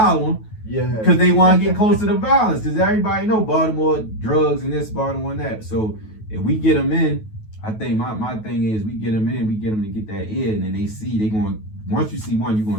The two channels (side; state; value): right; late; 9.3 ms